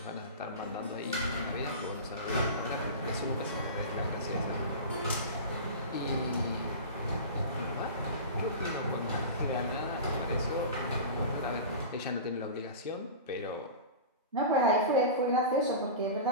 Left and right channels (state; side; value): inverted; both; correlation -0.31